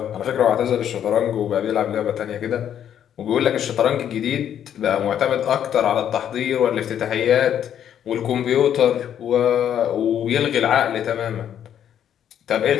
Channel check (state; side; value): quieter; right; 9.7 dB